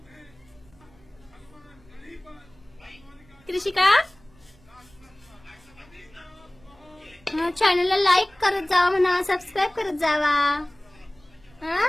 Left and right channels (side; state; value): right; noise; rumble, 28 dB below the sound